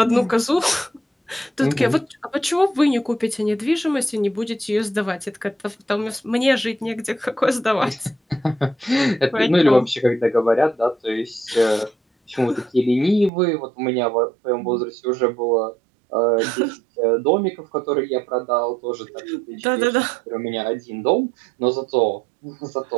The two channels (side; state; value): left; drops out; at 13.3 s